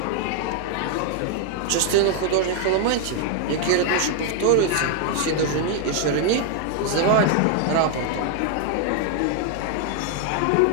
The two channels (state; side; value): different; both; correlation 0.00